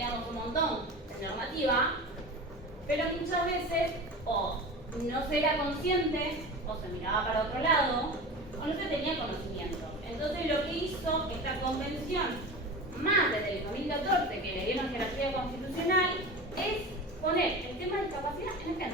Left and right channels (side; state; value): both; normal; correlation 0.31